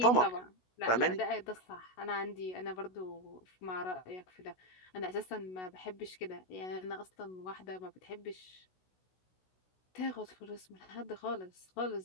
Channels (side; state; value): right; late; 16 ms